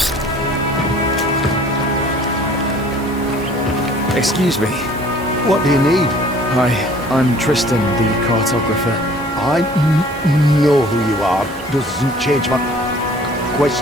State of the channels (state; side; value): normal; both; correlation 0.52